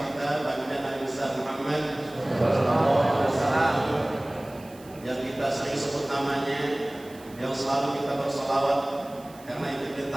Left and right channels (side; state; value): right; noise; hiss, 24 dB below the sound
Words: kita baginda Nabi Muhammad SAW yang kita sering sebut namanya, yang selalu kita bersolawat karena itu